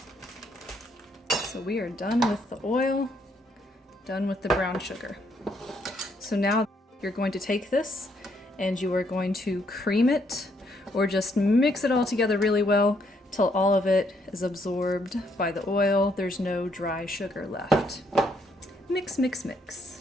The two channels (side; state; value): both; normal; correlation 0.72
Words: So we are done with the oil, done with the brown sugar. So now you're going to take this and you are going to cream it, or just mix it all together really well till all of it is absorbed by the oil. There's no dry sugar left. Mix, mix, mix.